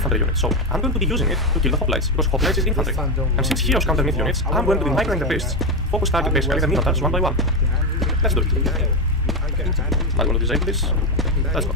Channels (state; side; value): normal; both; correlation 0.10